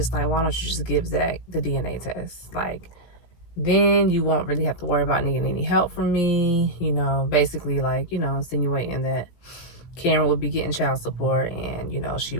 like, why don't you just give Zach the DNA test? Like, then you won't really have to worry about needing any help from me. Basically, like, insinuating that Karen will be getting child support, and, she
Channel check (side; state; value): right; late; 17 ms